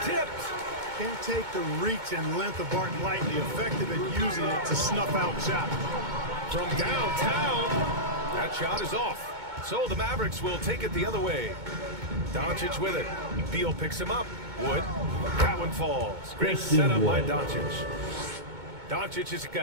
Tipped. Can't take the reach and length of Barton lightly, effective at using it to snuff out shots. From downtown, that shot is off. So the Mavericks will take it the other way. Doncic with it. Beal picks him up. Wood. That one falls. Great setup by Doncic. Doncic has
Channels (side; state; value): left; late; 2.2 ms